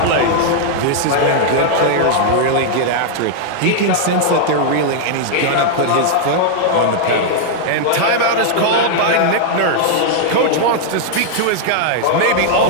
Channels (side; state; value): both; different; correlation -0.01